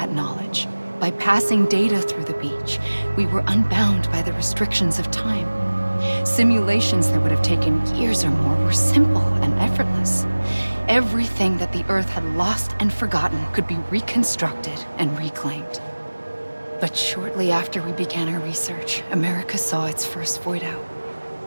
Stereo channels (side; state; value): both; inverted; correlation -1.00